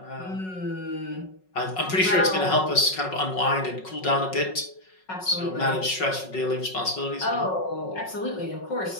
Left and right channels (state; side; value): late; right; 5.4 ms